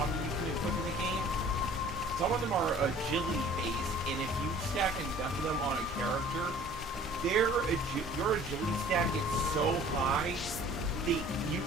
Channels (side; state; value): both; normal; correlation 0.50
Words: can equip in the game, some of them are agility based, and if you stack enough of them on a character, your agility stat gets so high that you